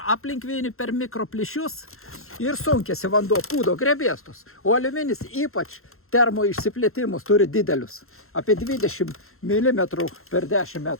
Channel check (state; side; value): late; right; 0.62 ms